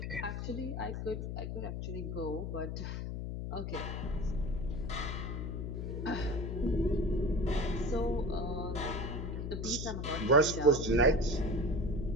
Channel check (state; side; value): noise; left; hum, 4 dB below the sound